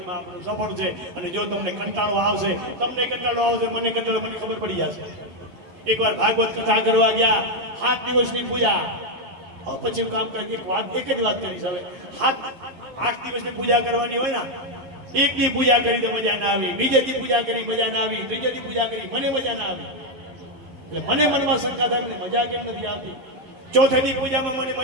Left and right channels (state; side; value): late; left; 11 ms